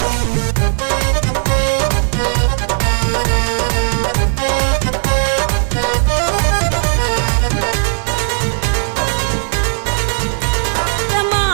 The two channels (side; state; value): left; silent; 59 dB below the other